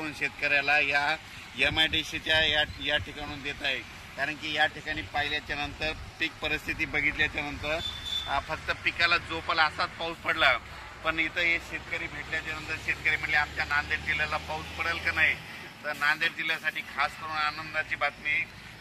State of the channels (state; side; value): identical; both; correlation 1.00